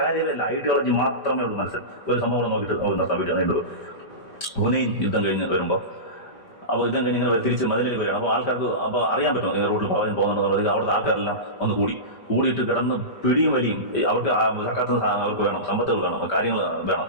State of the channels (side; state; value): right; late; 5.1 ms